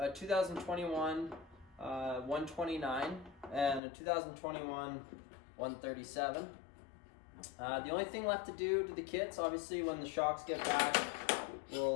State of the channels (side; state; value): right; drops out; at 3.8 s